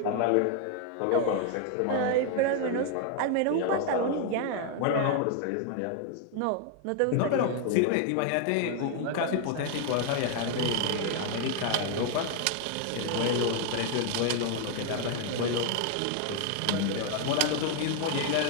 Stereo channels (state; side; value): different; both; correlation 0.00